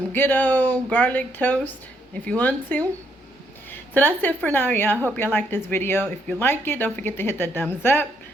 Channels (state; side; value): normal; both; correlation 0.73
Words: good old garlic toast if you want to. So that's it for now, y'all. I hope y'all like this video. If you like it, don't forget to hit that thumbs up.